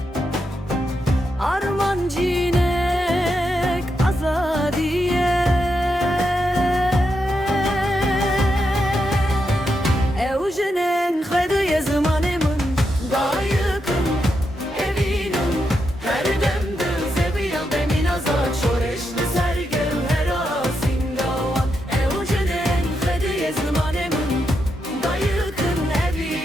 arman cinek azadiye Evjenen xediye zamanımın dayıkım evinim her demde zebiyan bemin azad şoreşli sergel her asingavan Evjenen xediye zamanımın dayıkım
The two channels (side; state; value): both; normal; correlation 0.84